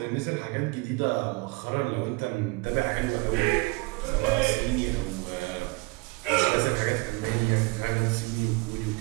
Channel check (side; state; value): left; quieter; 25.9 dB